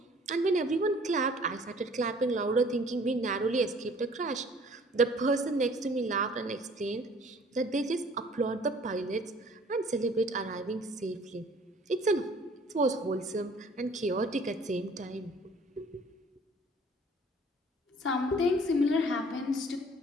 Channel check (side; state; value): both; normal; correlation 0.54